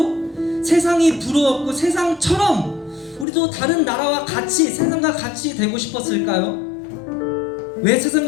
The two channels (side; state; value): right; drops out; at 3.2 s